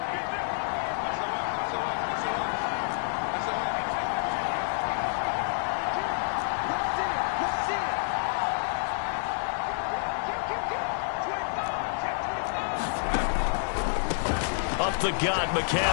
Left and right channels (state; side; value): silent; right; 59 dB below the other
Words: Up the gut,